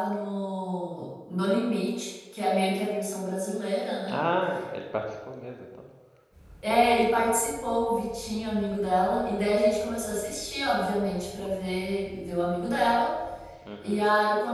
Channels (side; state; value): both; identical; correlation 1.00